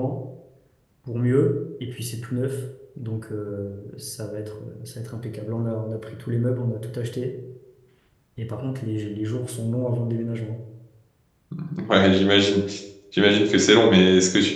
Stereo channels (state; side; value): identical; both; correlation 1.00